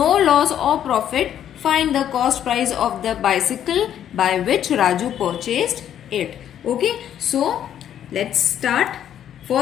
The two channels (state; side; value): quieter; right; 10.2 dB